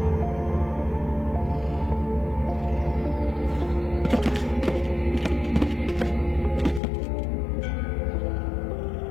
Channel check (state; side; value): drops out; right; at 6.8 s